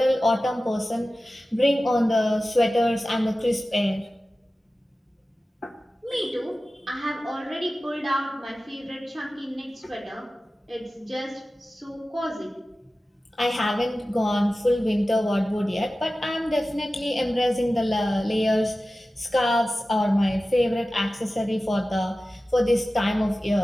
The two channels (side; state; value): both; normal; correlation 0.95